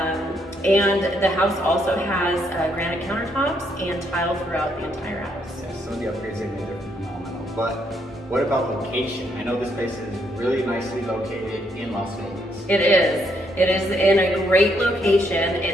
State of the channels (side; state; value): both; normal; correlation 0.73